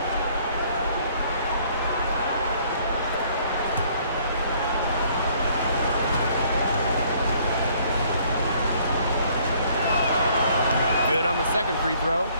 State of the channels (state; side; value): inverted; both; correlation -0.61